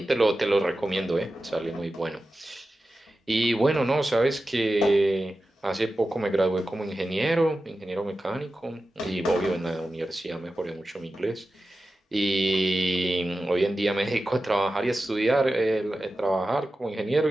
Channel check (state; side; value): normal; both; correlation 0.93